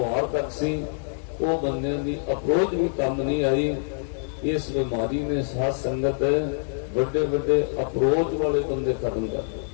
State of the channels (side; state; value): right; silent; digital silence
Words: ਤੱਕ ਸੀ, ਉਹ ਬੰਦਿਆਂ ਦੀ ਅਪਰੋਚ ਵੀ ਕੰਮ ਨਹੀਂ ਆਈ। ਇਸ ਬਿਮਾਰੀ ਨੇ ਸਾਧ ਸੰਗਤ ਵੱਡੇ ਵੱਡੇ ਅਪਰੋਚ ਵਾਲੇ ਬੰਦੇ ਖਤਮ ਕਰ ਦਿੱਤੇ।